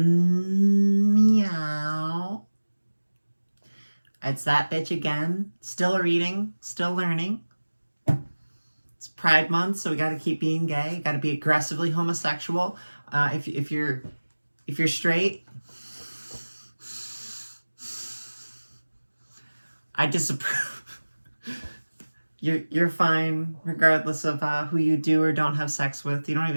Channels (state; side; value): inverted; both; correlation -1.00